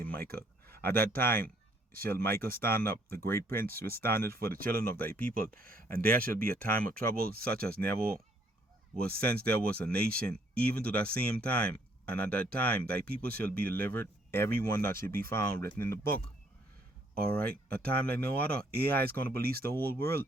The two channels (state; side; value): normal; both; correlation 0.66